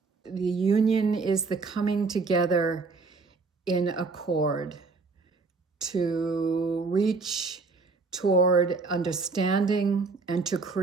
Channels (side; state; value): left; quieter; 4.2 dB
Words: The union is the coming together in accord to reach toward understanding and to